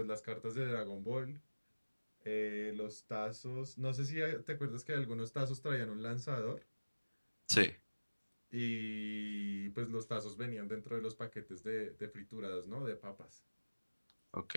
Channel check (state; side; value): inverted; both; correlation -1.00